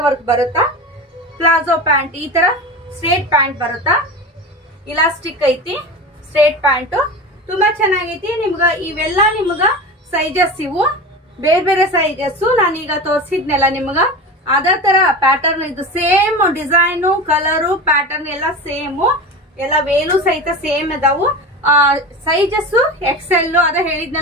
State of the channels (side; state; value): both; normal; correlation 0.28